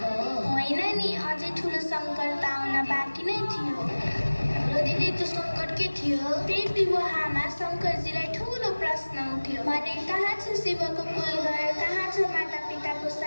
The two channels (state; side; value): inverted; both; correlation -1.00